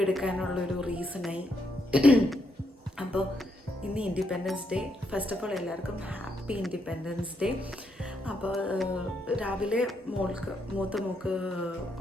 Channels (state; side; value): normal; both; correlation 0.78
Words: എടുക്കാനുള്ളൊരു റീസണായി. അപ്പോൾ ഇന്ന് independence day. First of all എല്ലാവർക്കും ഹാപ്പി ഇൻഡിപെൻഡൻസ് ഡേ. അപ്പോൾ രാവിലെ മൂത്ത മോൾക്ക്